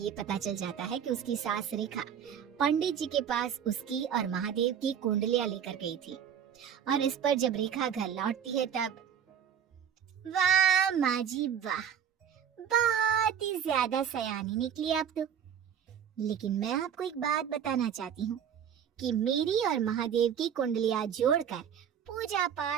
पता चल जाता है कि उसकी सास रेखा पंडित जी के पास उसकी और महादेव की कुंडलियां लेकर गई थी, और इस पर जब रेखा घर लौटती है तब वाह माँ जी वाह, बहुत ही ज्यादा सयानी निकली आप तो। लेकिन मैं आपको एक बात बताना चाहती हूँ कि मेरी और महादेव की कुंडलियां जोड़कर पूजा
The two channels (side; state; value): left; quieter; 8.5 dB